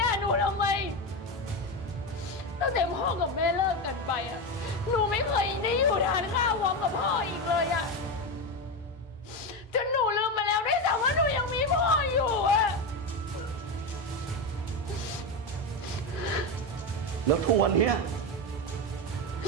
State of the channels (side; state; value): both; normal; correlation 0.14